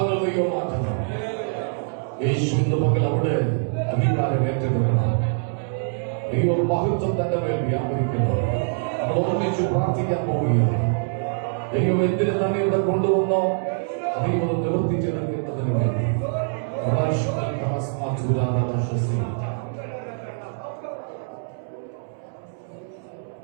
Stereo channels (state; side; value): silent; left; 63 dB below the other